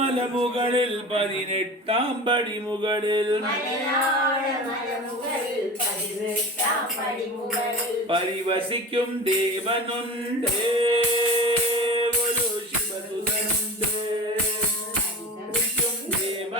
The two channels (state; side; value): normal; both; correlation 0.33